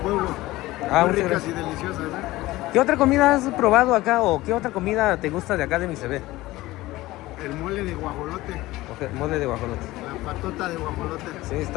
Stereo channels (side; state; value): right; quieter; 18.1 dB